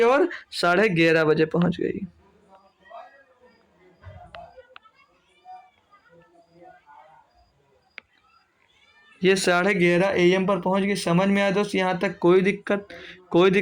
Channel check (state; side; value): identical; both; correlation 1.00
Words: और 11:30 बजे पहुंच गई। ये 11:30 AM पर पहुंच गई। समझ में आया दोस्त यहाँ तक? कोई